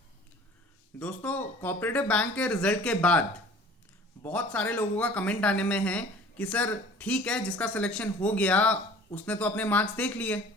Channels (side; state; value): both; normal; correlation 0.46